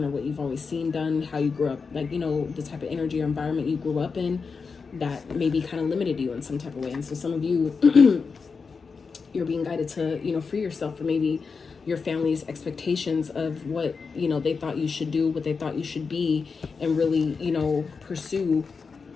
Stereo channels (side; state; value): right; quieter; 5.0 dB